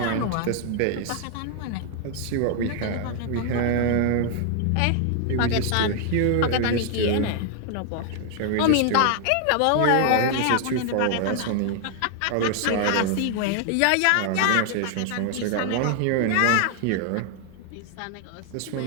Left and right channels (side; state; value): both; different; correlation 0.00